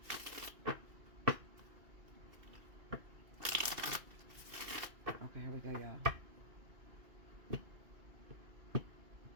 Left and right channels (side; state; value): left; late; 2.7 ms